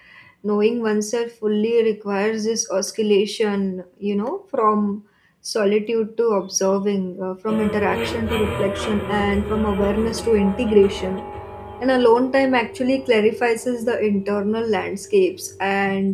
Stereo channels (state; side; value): identical; both; correlation 1.00